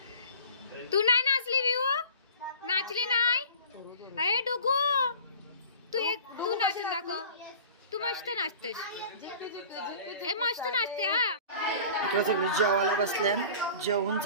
तू नाही नाचली विऊ? नाचली नाही? अरे डुगू तू नाचून दाखव. तू मस्त नाचतेस. ए मस्त नाचते. हा इकडे सगळी जेवायला बसल्या. जेवण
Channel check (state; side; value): inverted; both; correlation -0.42